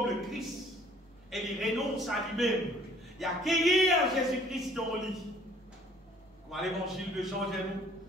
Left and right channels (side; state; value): both; normal; correlation 0.57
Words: le Christ, et il renonce à lui-même, il a accueilli Jésus-Christ dans le lit. Comme à l'évangile de Jean,